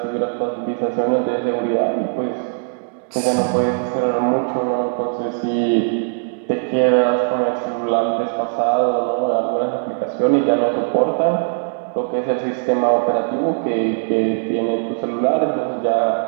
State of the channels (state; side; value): silent; left; digital silence